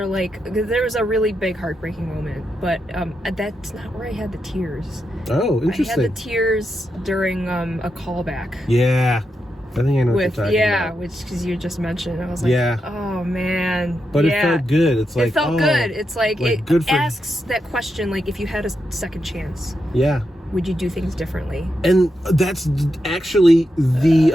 like, there was a really big heartbreaking moment, but that's not where I had the tears. Oh, interesting. I had the tears during a callback. Yeah. I think I know what you're talking about. Which, because you just mentioned, I was like, oh man. But it felt good. It's like, it felt good. It's like it asks that question, like, if you had a second chance, would you do things differently? And that's actually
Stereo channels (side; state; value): both; normal; correlation 0.85